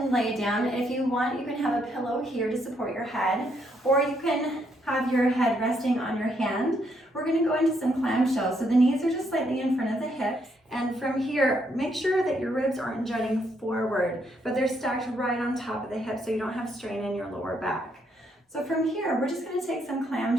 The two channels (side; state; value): both; normal; correlation 0.74